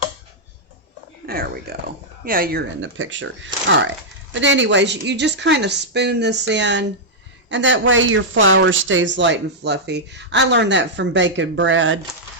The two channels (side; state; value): both; normal; correlation -0.06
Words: There we go. Yeah, you're in the picture. All right. But anyways, you just kind of spoon this in, and that way your flour stays light and fluffy. I learned that from baking bread.